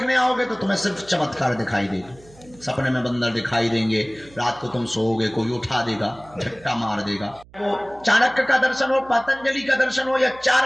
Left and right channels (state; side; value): noise; right; hum, 25 dB below the sound